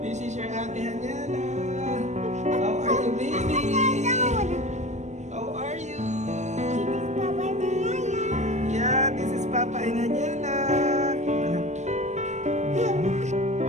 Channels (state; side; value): late; left; 0.34 ms